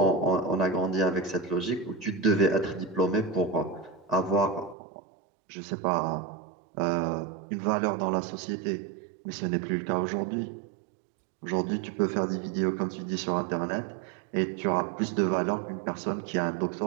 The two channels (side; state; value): left; drops out; at 4.8 s